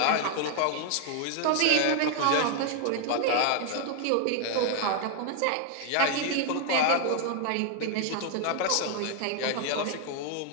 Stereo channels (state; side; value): different; both; correlation 0.00